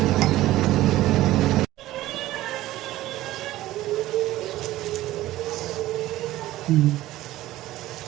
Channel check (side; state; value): left; quieter; 15.8 dB